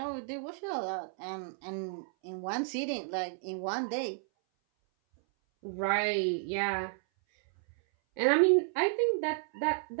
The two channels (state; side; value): silent; left; 56 dB below the other